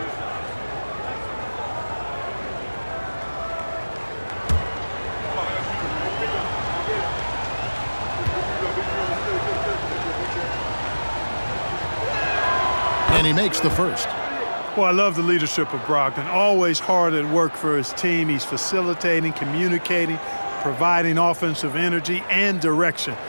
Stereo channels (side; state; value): both; inverted; correlation -1.00